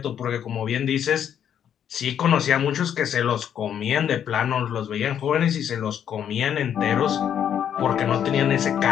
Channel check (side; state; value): right; quieter; 9.1 dB